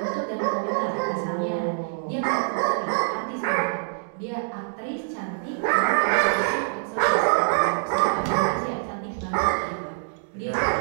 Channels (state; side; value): silent; left; digital silence